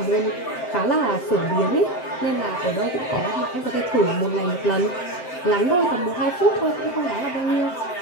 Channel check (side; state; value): right; late; 7.8 ms